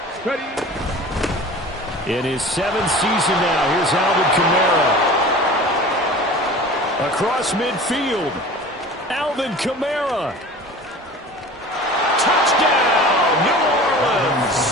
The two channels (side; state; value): both; normal; correlation 0.40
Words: Ready. In his 7th season now, here's Alvin Kamara. Across midfield, Alvin Kamara. Touchdown, New